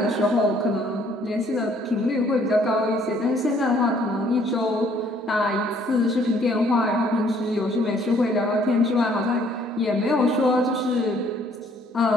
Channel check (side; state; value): both; normal; correlation 0.62